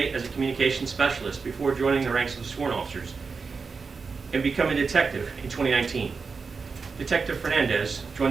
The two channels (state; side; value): quieter; left; 4.9 dB